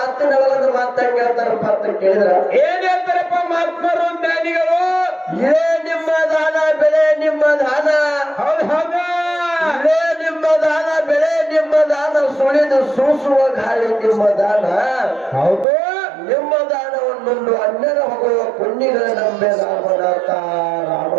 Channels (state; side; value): drops out; left; at 15.7 s